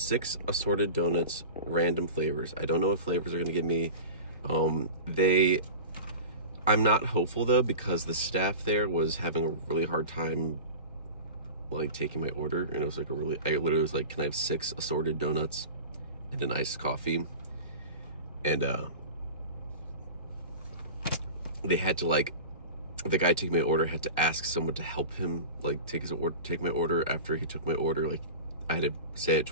assorted donuts, random flavors. I don't know what flavors they're gonna give me. I'm not hopeful though because the staff there was having a really hard time like taking my order, and it was like I literally was like, can I have 6 assorted donuts and an iced coffee? And they had to like, the guy taking my order had to ask someone to help him like take my order after he took my order. Like I had to say it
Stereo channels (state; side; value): inverted; both; correlation -0.33